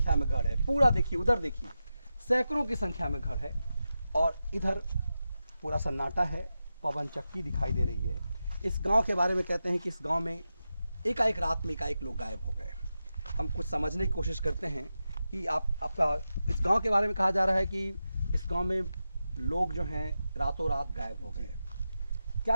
में घर है। पूरा देखिए, उधर देखिए, सैकड़ों की संख्या में घर है और इधर पूरा सन्नाटा है, पवन चक्की दिखाई दे रही है। इस गांव के बारे में कहते हैं कि इस गांव में एकाएक रात में एकाएक लोग गायब हो गए। हम कुछ समझने की कोशिश करते हैं कि आपका इस गांव के बारे में कहा जा रहा है कि इस गांव में लोग जो हैं रातों रात गायब हो गए।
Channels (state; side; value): inverted; both; correlation -0.91